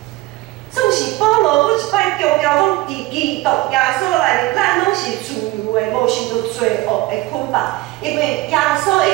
总是保罗搁一摆强调讲，伫基督耶稣内面，咱拢是自由的，无受到罪恶的捆绑。因为耶稣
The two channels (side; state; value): left; quieter; 19.3 dB